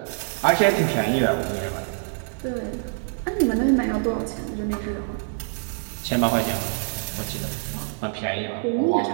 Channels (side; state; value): left; silent; digital silence